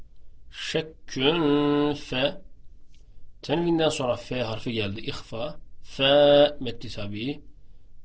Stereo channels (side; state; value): both; identical; correlation 1.00